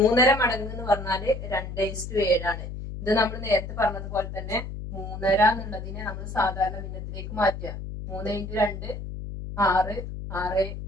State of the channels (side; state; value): left; noise; hum, 8 dB below the sound